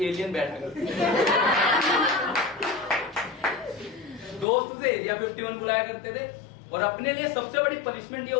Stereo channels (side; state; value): right; drops out; at 4.5 s